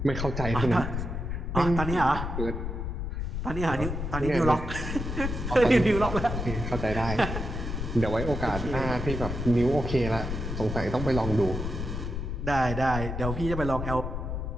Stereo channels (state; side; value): noise; left; rumble, 4 dB below the sound